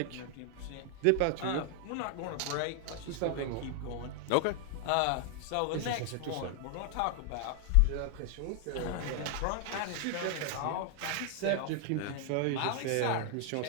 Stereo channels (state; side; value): different; both; correlation 0.00